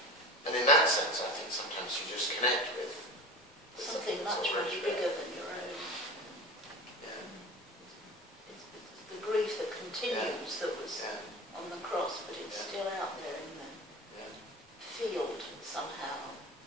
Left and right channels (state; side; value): normal; both; correlation 0.32